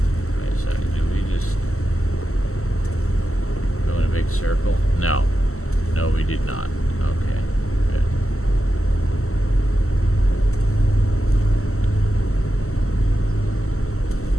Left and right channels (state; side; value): late; right; 0.63 ms